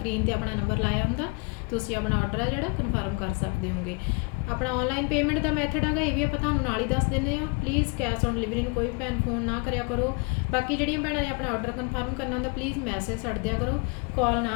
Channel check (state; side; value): quieter; right; 31.0 dB